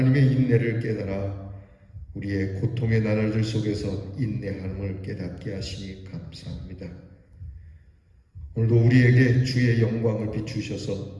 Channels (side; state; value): both; identical; correlation 1.00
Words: 인내를 깨달아 우리의 고통의 나날들 속에서 인내함을 깨닫게 하시니 감사합니다. 오늘도 우리에게 주의 영광을